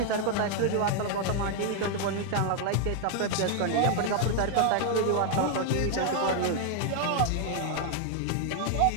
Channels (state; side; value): different; both; correlation 0.00